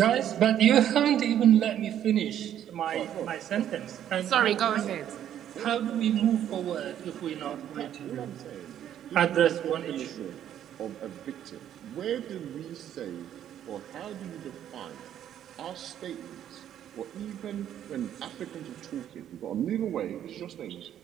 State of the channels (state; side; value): quieter; left; 10.6 dB